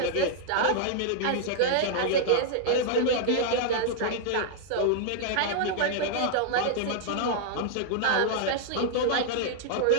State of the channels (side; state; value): both; different; correlation -0.01